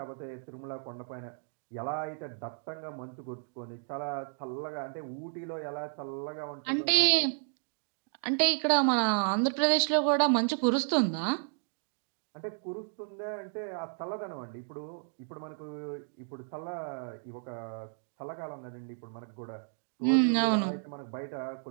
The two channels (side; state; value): left; silent; 56 dB below the other